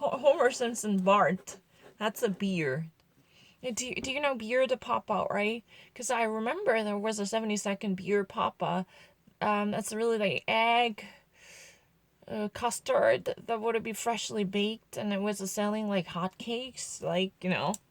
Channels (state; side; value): identical; both; correlation 1.00